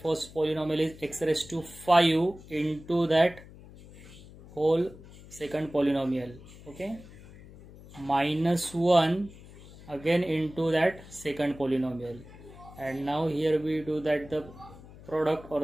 first polynomial is x raised to 5 into that whole second polynomial. Okay, minus 1 again into that second polynomial, and now here we do that the product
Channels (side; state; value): left; noise; hum, 19 dB below the sound